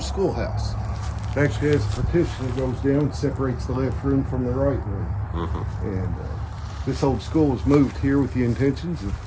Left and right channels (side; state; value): both; identical; correlation 1.00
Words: schoolhouse. It actually has a partition that goes down and separates the left room from the right room. And this old school was moved here with the intentions of